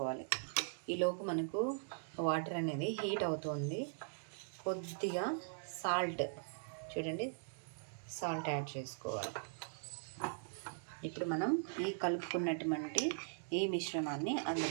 ఈలోపు మనకు వాటర్ అనేది హీట్ అవుతుంది. కొద్దిగా సాల్ట్, చూడండి, సాల్ట్ యాడ్ చేసుకోవాలి. ఇప్పుడు మనం ఈ కలుపుకున్నటువంటి ఈ మిశ్రమాన్ని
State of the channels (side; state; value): left; silent; digital silence